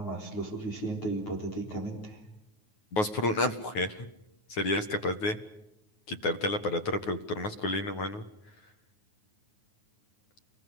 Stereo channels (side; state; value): right; late; 9.5 ms